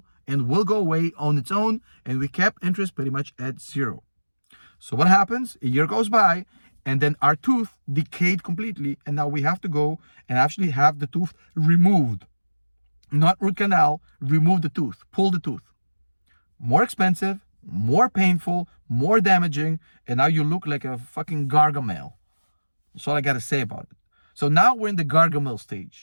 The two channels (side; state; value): both; inverted; correlation -1.00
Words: and will go away on its own, and we kept interest pretty much at zero. So what happens? A year goes by, and then our tooth decayed completely, and now we have to go and actually have the tooth removed. Not root canal, remove the tooth, pull the tooth. More expensive, more painful, more damaging, and now you look like a fucking Gargamel. That's all I gotta say about it. So now we're in the Gargamel